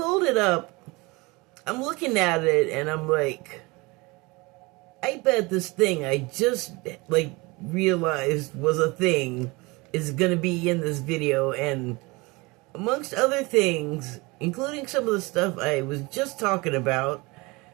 it up, I'm looking at it and I'm like, I bet this thing I just like realized was a thing is gonna be in this video, and amongst other things, including some of the stuff I was just talking about,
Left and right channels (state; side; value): quieter; left; 24.6 dB